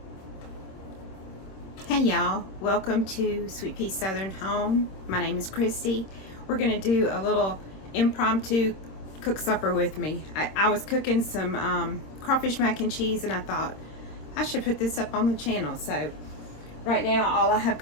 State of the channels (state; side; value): late; right; 26 ms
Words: y'all, welcome to Sweet Pea Southern Home. My name is Christy. We're gonna do a little impromptu cook supper with me. I was cooking some crawfish mac and cheese, and I thought I should put this up on the channel. So right now all I have